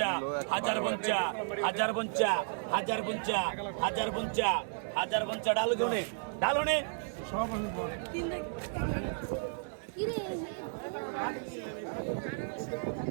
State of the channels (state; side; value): silent; left; digital silence